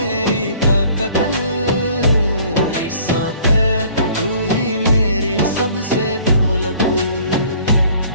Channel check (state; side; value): inverted; both; correlation -0.54